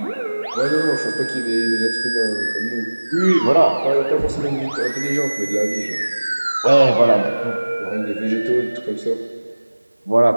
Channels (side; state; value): both; inverted; correlation -1.00